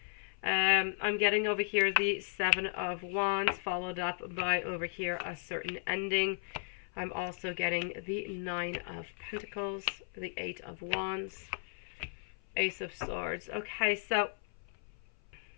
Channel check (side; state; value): right; silent; 54 dB below the other